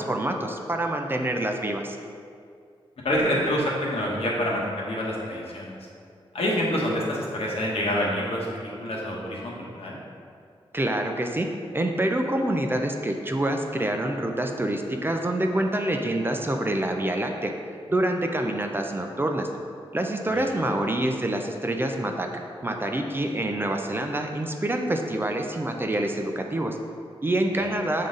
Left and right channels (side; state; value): both; normal; correlation 0.71